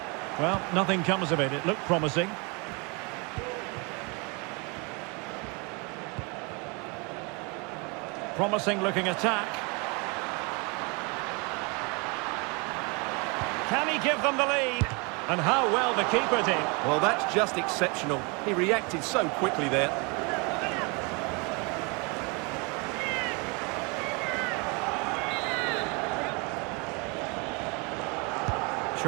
Well, nothing comes of it. It looked promising. Promising looking attack. Can he give them the lead? And how well the keeper did. Well, that's just exceptional. He reacted so quickly there.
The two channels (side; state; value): left; quieter; 30.6 dB